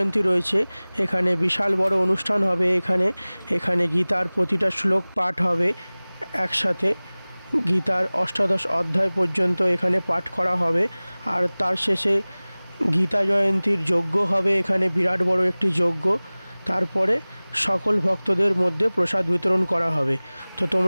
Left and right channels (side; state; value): both; inverted; correlation -1.00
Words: রয়েছে। এখানে বিশাল বড় অনুষ্ঠান হবে। এখানে গীতার প্রতিটা শ্লোক পাঠ হবে একসাথে। গীতার অষ্টাদশ অধ্যায় পর্যন্ত এখানে পাঠ করা হবে। আর তার শেষে গীতা জয়ন্তীর যজ্ঞ হবে। এখানে বিরাট বড় একটি যজ্ঞ। তারপরে সকল ভক্তদের মধ্যে প্রসাদ বিতরণ করা হবে। তো